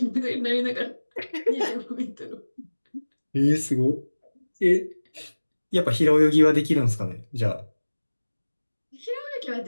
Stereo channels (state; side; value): inverted; both; correlation -1.00